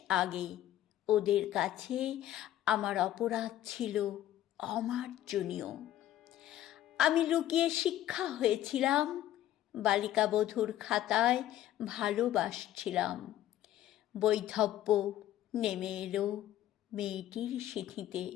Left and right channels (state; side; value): quieter; right; 12.8 dB